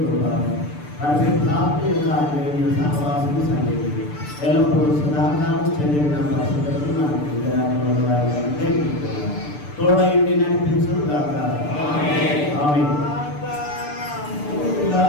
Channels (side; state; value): right; late; 6.8 ms